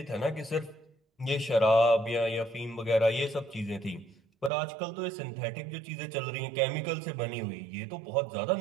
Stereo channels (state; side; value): drops out; left; at 4.5 s